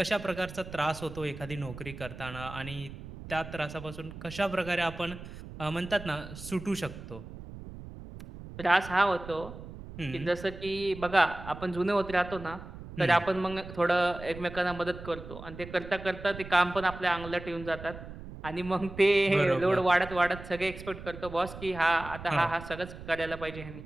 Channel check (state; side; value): noise; right; rumble, 13 dB below the sound